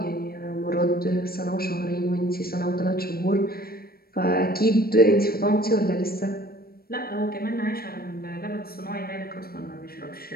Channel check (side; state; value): right; late; 0.44 ms